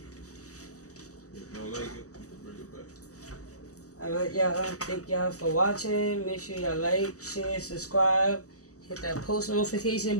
If you don't like it, you can bring it back. Alright, y'all. Thank y'all for watching. Make sure y'all like, share, subscribe. Hit that post notification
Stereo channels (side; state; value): right; late; 0.66 ms